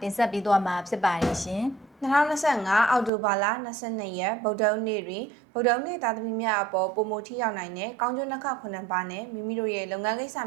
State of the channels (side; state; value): left; drops out; at 3.1 s